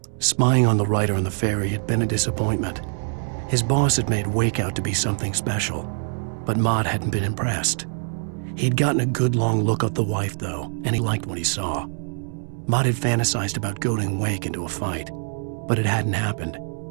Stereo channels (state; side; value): silent; left; 60 dB below the other